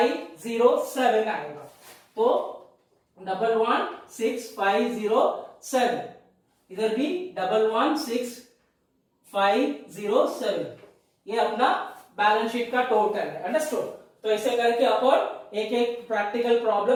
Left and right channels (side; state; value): both; identical; correlation 1.00